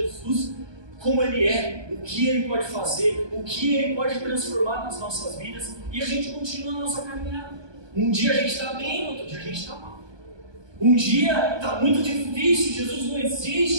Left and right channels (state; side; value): late; left; 1.2 ms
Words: como Ele é, o que Ele pode fazer, o que Ele pode transformar nas nossas vidas, e a gente continua a nossa caminhada. Um dia a gente está bem, outro dia a gente está mal. Um dia está muito difícil, Jesus não